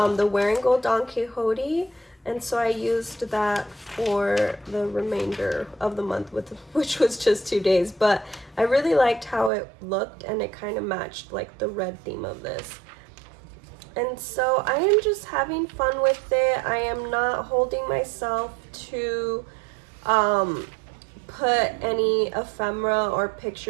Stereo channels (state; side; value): drops out; left; at 9.5 s